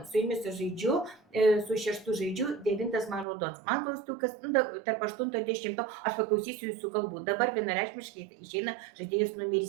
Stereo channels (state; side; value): drops out; left; at 3.2 s